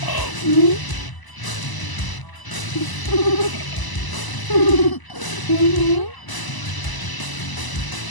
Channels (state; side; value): late; right; 1.0 ms